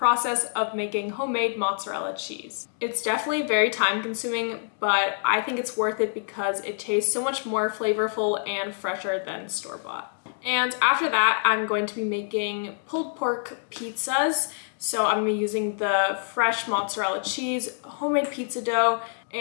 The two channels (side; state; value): right; silent; digital silence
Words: of making homemade mozzarella cheese. It's definitely very time consuming, but I think it's worth it because it tastes so much more flavorful and fresher than store-bought. And after that, I'm going to be making pulled pork pizzas. So I'm going to be using the fresh mozzarella cheese, homemade pizza dough,